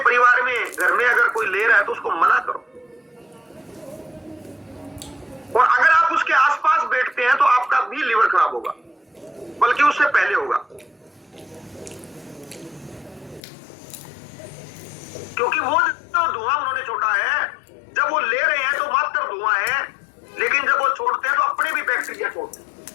में, घर में अगर कोई ले रहा है तो उसको मना करो, और अगर आप उसके आसपास बैठते हैं तो आपका भी लीवर खराब होगा, बल्कि उससे पहले होगा, क्योंकि वो जो धुआं उन्होंने छोड़ा है, जब वो ले रहे हैं तो मात्र धुआं है, लेकिन जब वो छोड़ते हैं तो अपने भी बैक्टीरिया छोड़ते हैं।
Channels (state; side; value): drops out; right; at 13.4 s